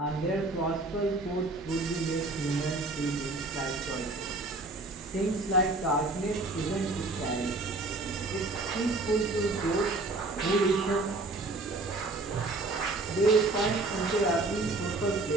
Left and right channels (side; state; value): left; quieter; 3.1 dB